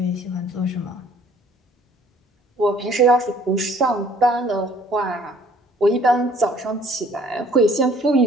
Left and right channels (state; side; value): normal; both; correlation 0.57